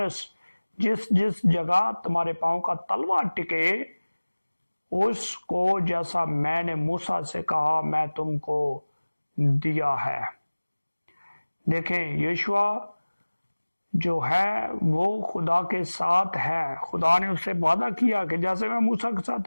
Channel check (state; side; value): inverted; both; correlation -1.00